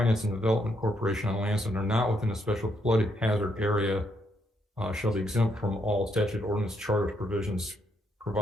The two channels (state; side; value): normal; both; correlation 0.75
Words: and Development Corporation on lands that are not within a special flood hazard area shall be exempt from all statute, ordinance, charter provisions,